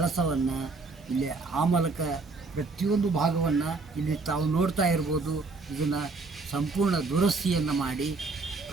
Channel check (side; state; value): left; quieter; 3.9 dB